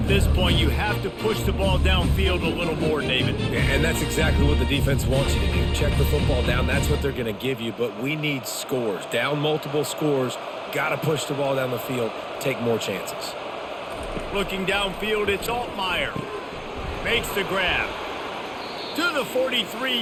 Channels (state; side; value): identical; both; correlation 1.00